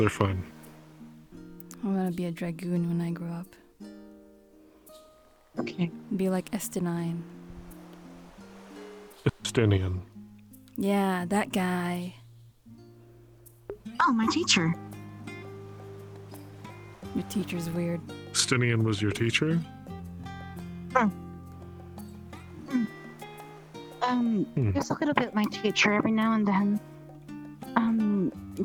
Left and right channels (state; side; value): identical; both; correlation 1.00